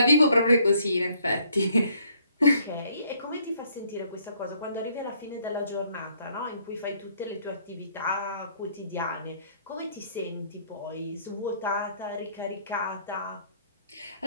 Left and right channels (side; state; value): both; inverted; correlation -0.65